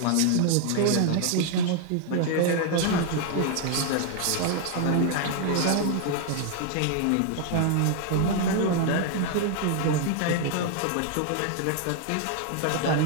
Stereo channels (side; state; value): both; different; correlation 0.00